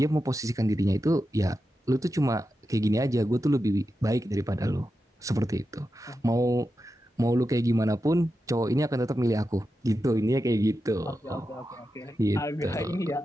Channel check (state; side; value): normal; both; correlation 0.90